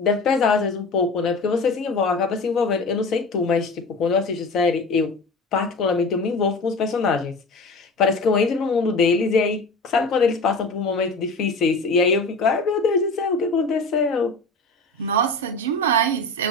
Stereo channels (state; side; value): quieter; right; 3.1 dB